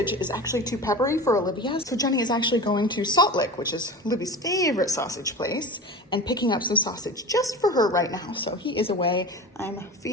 is actually too peppery for Olivia. So Jenny is actually going to Salt Lick, which is Livy's favorite sausage place, and picking up some sausage just for her right now. So he is away. I'm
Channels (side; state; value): both; normal; correlation 0.32